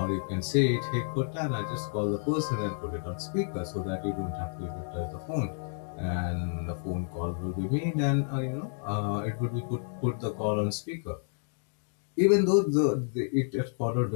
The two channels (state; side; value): silent; right; digital silence